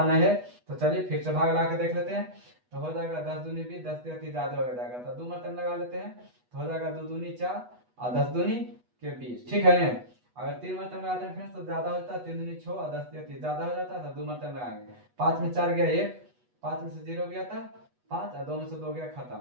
नहीं है। तो चलिए फिर से भाग लगा के देख लेते हैं, तो हो जाएगा 10 दूनी 20, 10 3 ज्यादा हो जाएगा, तो 2 मतलब लगा लेते हैं, तो हो जाएगा 2 दूनी 4 और 10 दूनी के 20। ठीक है ना, अगर 3 मरतबा लगाते हैं फ्रेंड्स तो ज्यादा होता है, 3 दूनी 6 और 10 या 30 ज्यादा हो जाता है, तो 2 मरतबा लगाएंगे। 5 में 4 गया 1, 5 में से 0 गया था 5 और 2 में से 2 गया, खत्म।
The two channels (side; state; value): left; late; 8.2 ms